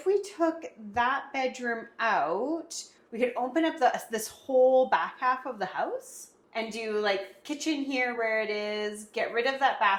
we took that bedroom out, we could open up this whole back half of the house and do like kitchen here where it is, get rid of that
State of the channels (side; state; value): both; identical; correlation 1.00